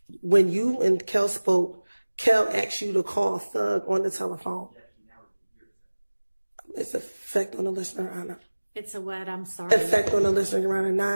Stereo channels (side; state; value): both; inverted; correlation -1.00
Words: when you and Kel spoke, Kel asked you to call Thug on the telephone. It's effect on the listener or not? It's a what? I'm sorry. Effect on the listener or